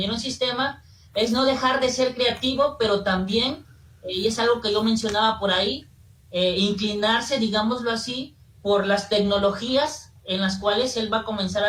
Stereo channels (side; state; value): both; identical; correlation 1.00